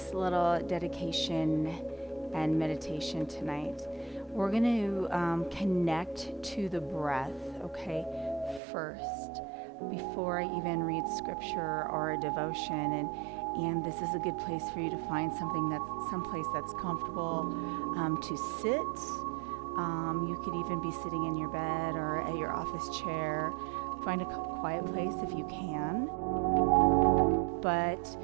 little dedication and meditation tonight. We're going to connect to the breath, okay, first, before I even read scripture or a devotion. And this is a good place for you to find someplace that's comfortable to sit. You could even be sitting in your bed or at your office chair. Find a quiet place if you can. But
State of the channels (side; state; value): left; drops out; at 8.6 s